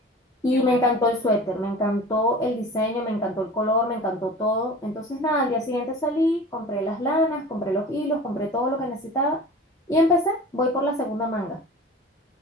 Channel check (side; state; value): both; normal; correlation 0.38